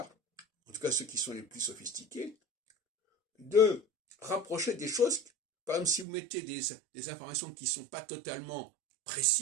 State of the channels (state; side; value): drops out; left; at 6.1 s